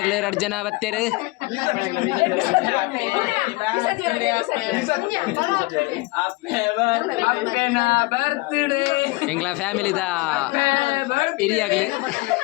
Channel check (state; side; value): quieter; right; 23.3 dB